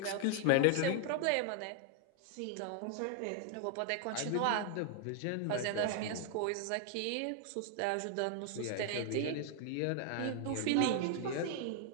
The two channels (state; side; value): different; both; correlation 0.00